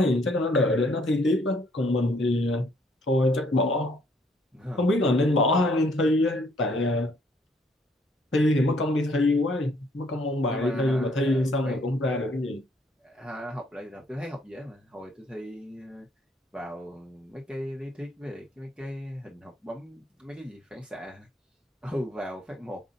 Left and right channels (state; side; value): normal; both; correlation 0.65